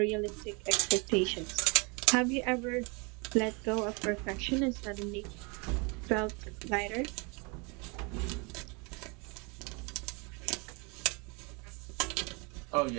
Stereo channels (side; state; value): left; quieter; 30.8 dB